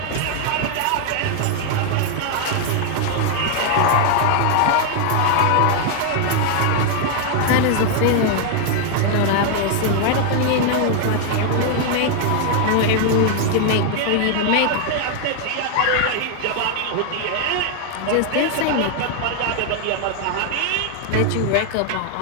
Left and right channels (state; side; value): different; both; correlation 0.00